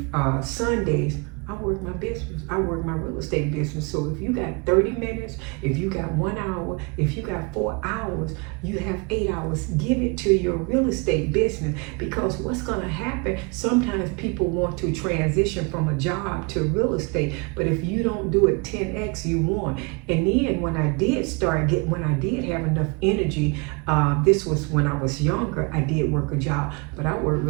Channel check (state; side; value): quieter; left; 30.3 dB